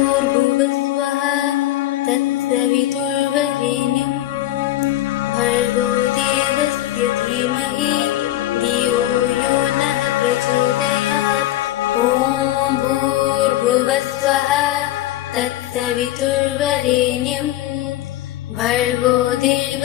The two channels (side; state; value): right; quieter; 14.4 dB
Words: तत्सवितुर्वरेण्यं भर्गो देवस्य धीमहि धियो यो नः प्रचोदयात्। ॐ भूर्भुवस्वः तत्सवितुर्वरेण्यं भर्गो